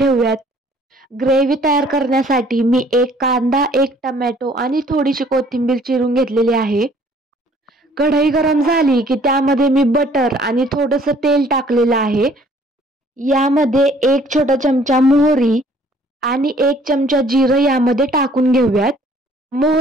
ग्रेव्ही तयार करण्यासाठी मी 1 कांदा, 1 टोमॅटो आणि थोडीशी कोथिंबीर चिरून घेतलेली आहे. कढई गरम झाली की त्यामध्ये मी बटर आणि थोडंसं तेल टाकलेलं आहे. यामध्ये 1 छोटा चमचा मोहरी आणि 1 चमचा जिरं यामध्ये टाकून घेऊयात.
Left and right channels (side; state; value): both; normal; correlation 0.58